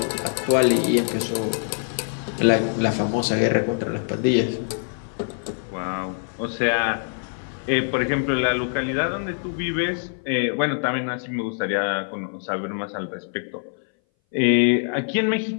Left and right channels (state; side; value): silent; right; 59 dB below the other